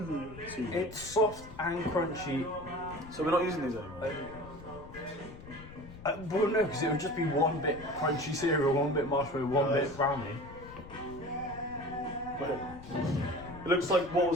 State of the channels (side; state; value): left; noise; rumble, 16 dB below the sound